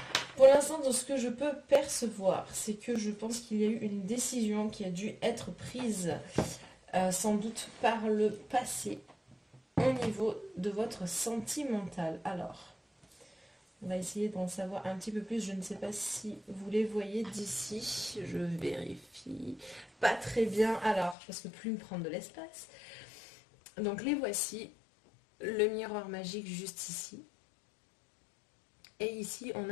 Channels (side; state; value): right; drops out; at 21.2 s